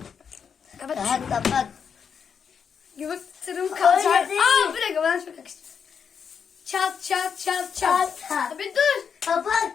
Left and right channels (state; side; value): quieter; right; 6.8 dB